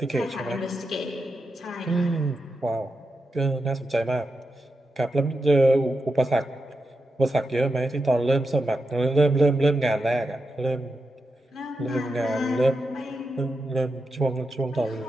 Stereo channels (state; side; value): normal; both; correlation 0.88